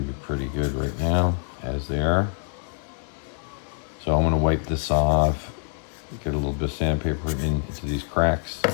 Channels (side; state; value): right; silent; 62 dB below the other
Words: to be pretty good right now, as they are. So I'm going to wipe this off, get a little bit of sandpaper into these cracks,